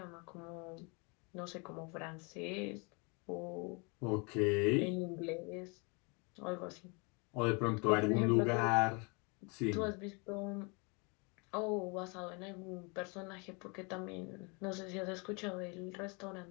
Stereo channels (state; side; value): quieter; right; 31.7 dB